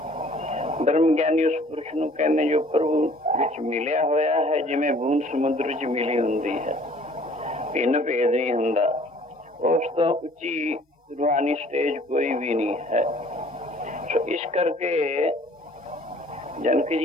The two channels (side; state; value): both; normal; correlation 0.54